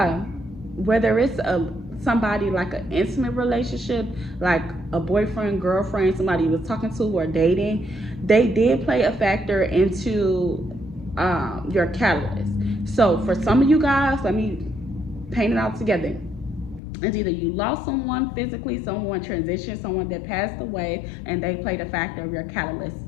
whether it's somebody like an intimate relationship, like a boyfriend, girlfriend, somebody you was talking to or dating, they did play a factor into your catalyst. So for some of you guys, let me paint it out together. It's either you lost someone physically, someone transitioned, someone that passed away, and they played a factor of your catalyst,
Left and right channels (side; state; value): right; drops out; at 16.8 s